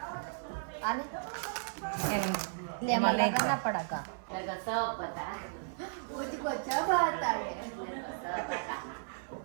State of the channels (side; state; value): left; silent; 55 dB below the other